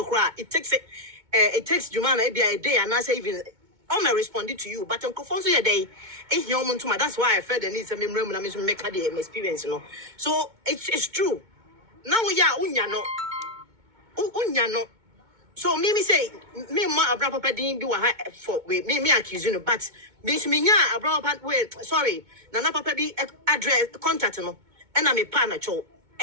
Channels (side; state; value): left; late; 2.2 ms